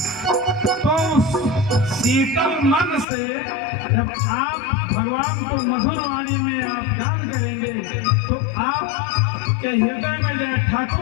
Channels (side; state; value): right; drops out; at 3.1 s